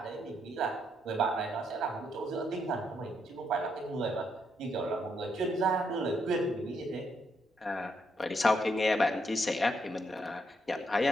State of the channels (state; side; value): normal; both; correlation 0.77